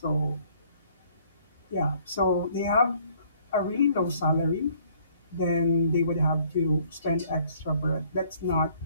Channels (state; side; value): inverted; both; correlation -0.61